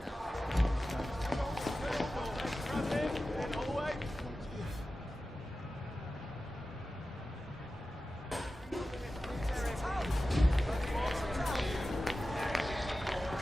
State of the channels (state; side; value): normal; both; correlation 0.94